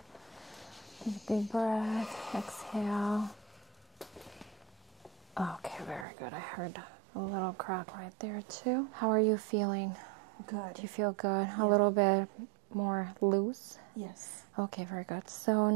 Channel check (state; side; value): drops out; left; at 6.1 s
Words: Take a deep breath. Exhale. Okay, very good. I heard a little crack right there too. How are you feeling? Good. Do you feel good? Yeah. A little bit more loose? Yes. Okay, very good. So